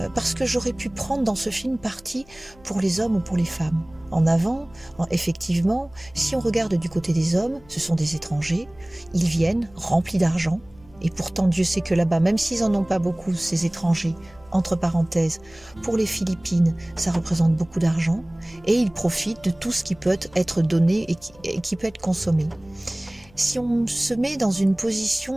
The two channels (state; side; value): noise; left; hum, 26 dB below the sound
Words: parce que j'aurais pu prendre dans ce film parti pour les hommes ou pour les femmes. En avant, effectivement, si on regarde du côté des hommes, ce sont des étrangers, ils viennent remplis d'argent, et pourtant Dieu sait que là-bas, même s'ils n'en ont pas beaucoup, ces étrangers, entre parenthèses, pour les Philippines, ça représente beaucoup d'argent, et ils profitent de tout ce qui peut être donné et qui peut être consommé. Si on se met dans une